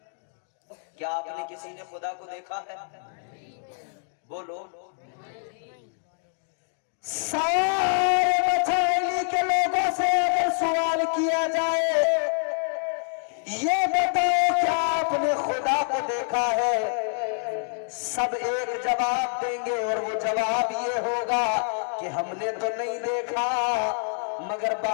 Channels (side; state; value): right; silent; digital silence